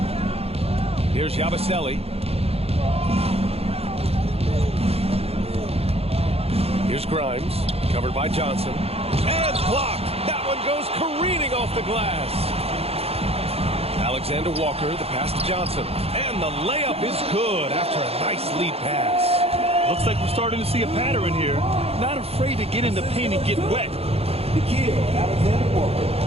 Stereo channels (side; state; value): left; late; 0.29 ms